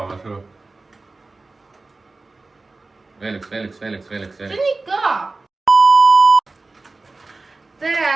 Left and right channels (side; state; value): left; quieter; 3.5 dB